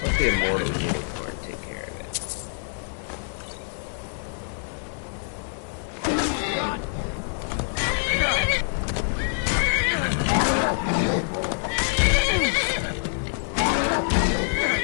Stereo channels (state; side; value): silent; right; digital silence